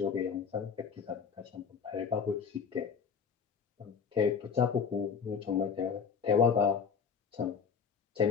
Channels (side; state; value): right; quieter; 6.3 dB